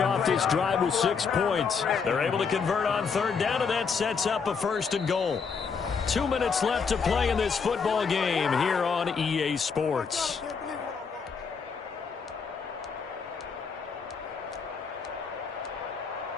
this drive with 6 points. They're able to convert on third down, and that sets up a first and goal. 2 minutes left to play in this football game here on EA Sports.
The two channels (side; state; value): right; quieter; 5.7 dB